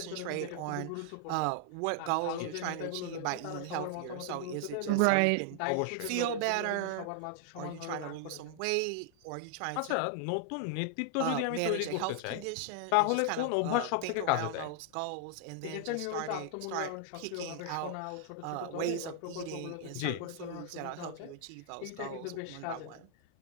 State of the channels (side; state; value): both; different; correlation 0.00